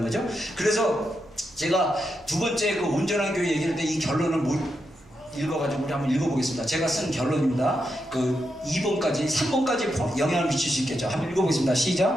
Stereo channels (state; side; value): noise; right; hum, 28 dB below the sound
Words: 거죠. 그래서 제가 두 번째 그 온전한 교회 얘기할 때 이 결론을 읽어가지고 우리 한번 읽어보겠습니다. 제가 쓴 결론입니다. 그 2번까지 3번까지 영향을 미칠 수 있겠죠. 한번 읽어보겠습니다.